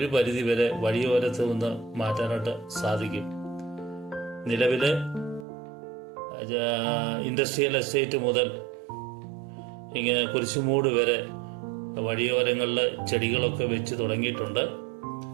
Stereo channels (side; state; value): left; drops out; at 5.5 s